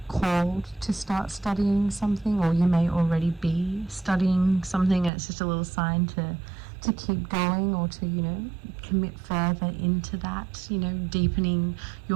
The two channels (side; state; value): left; drops out; at 5.1 s